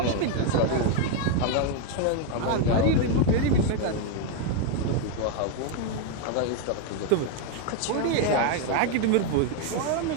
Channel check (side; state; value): both; different; correlation 0.01